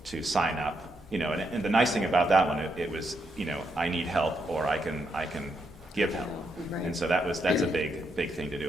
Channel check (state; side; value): normal; both; correlation 0.79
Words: to sign up. And the nice thing about that one, it was, I need help, or I can give help. Right. And so that's a big thing to